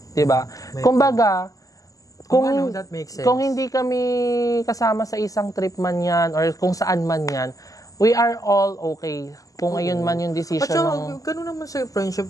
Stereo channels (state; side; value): late; right; 0.17 ms